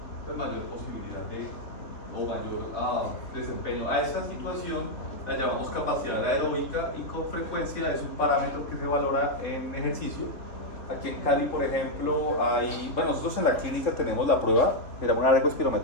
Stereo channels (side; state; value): right; late; 3.4 ms